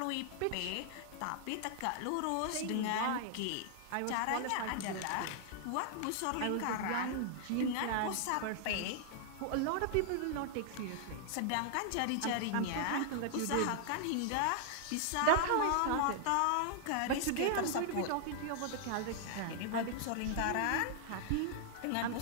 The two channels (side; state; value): both; different; correlation 0.00